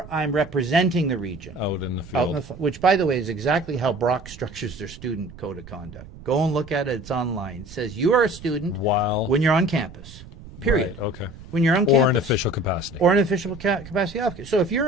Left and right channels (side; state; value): right; noise; rumble, 17 dB below the sound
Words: I'm representing the region out in the field, which, by the way, is exactly how Brock structures their student code of conduct. Go and look at it. It's online. It says you are a student when you're on campus, period. Right, okay. When you're on campus. Or an official capacity. Or an official capacity officer. So if